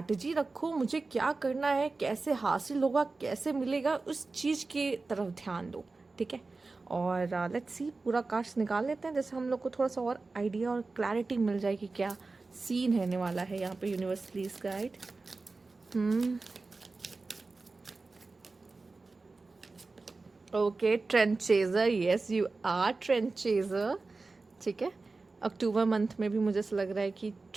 रखो। मुझे क्या करना है, कैसे हासिल होगा, कैसे मिलेगा, उस चीज़ की तरफ ध्यान दो, ठीक है? और लेट्स सी, पूरा कार्ड्स निकाल लेते हैं, जैसे हम लोग को थोड़ा सा और आइडिया और क्लैरिटी मिल जाए कि क्या सीन रहने वाला है यहाँ पे। Universe please guide. Okay, trend chaser. Yes, you are trend chaser, ठीक है? अक्टूबर मंथ में भी मुझे ऐसा लग रहा है कि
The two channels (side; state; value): left; quieter; 3.7 dB